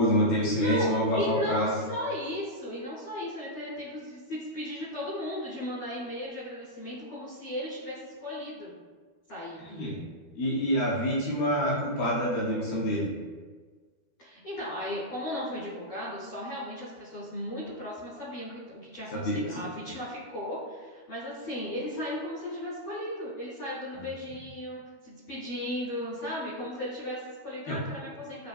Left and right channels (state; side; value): late; right; 12 ms